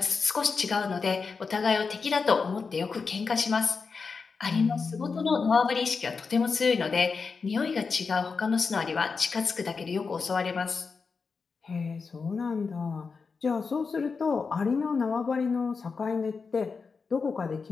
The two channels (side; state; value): right; quieter; 4.9 dB